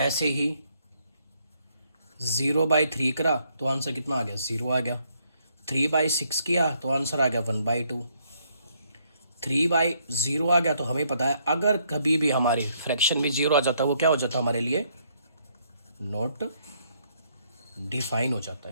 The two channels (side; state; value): both; inverted; correlation -0.71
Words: ही 0/3 करा तो आंसर कितना आ गया? 0 आ गया। 3/6 किया तो आंसर आ गया 1/2। 3/0 आ गया। तो हमें पता है अगर कभी भी हमारे फ्रैक्शन में 0 आ जाता है, वो क्या हो जाता है हमारे लिए? नॉट डिफाइन हो जाता